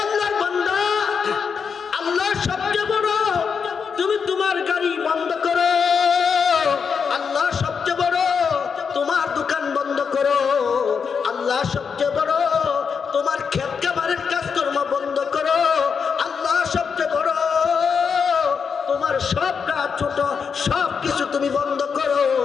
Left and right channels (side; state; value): right; quieter; 6.2 dB